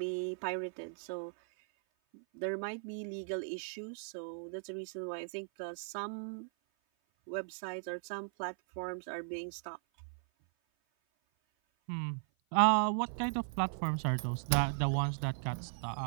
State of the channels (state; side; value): silent; left; 53 dB below the other